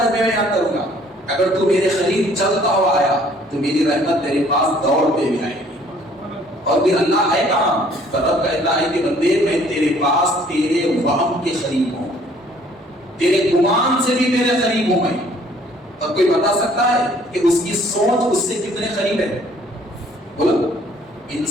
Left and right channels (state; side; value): normal; both; correlation 0.59